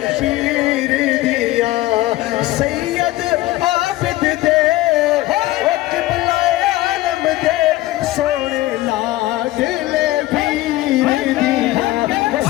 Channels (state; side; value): quieter; right; 17.3 dB